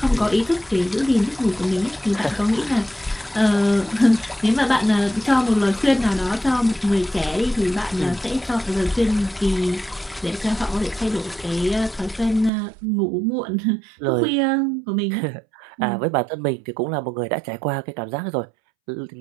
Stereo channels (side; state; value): left; drops out; at 12.5 s